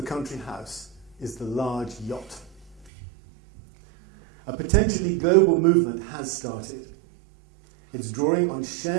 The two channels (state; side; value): drops out; left; at 2.9 s